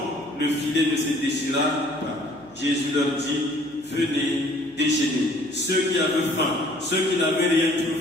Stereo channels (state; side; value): noise; right; hum, 28 dB below the sound